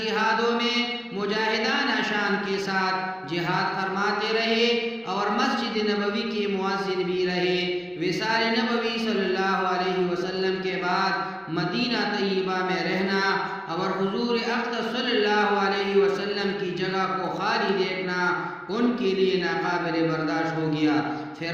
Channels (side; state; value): both; identical; correlation 1.00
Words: میں مجاہدانہ شان کے ساتھ جہاد فرماتے رہے اور مسجد نبوی کے مؤذن بھی رہے۔ وصال نبوی صلی اللہ علیہ وسلم کے بعد مدینہ طیبہ میں رہنا اور حضور اقدس صلی اللہ علیہ وسلم کی جگہ کو خالی دیکھنا ان کے لیے ناقابل برداشت ہو گیا۔